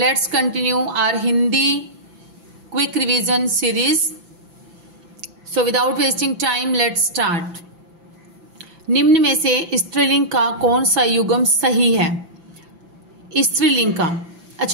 continue our Hindi quick revision series. So without wasting time, let's start. निम्न में से स्त्रीलिंग का कौन सा युग्म सही है? स्त्रीलिंग का।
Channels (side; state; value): left; late; 5.9 ms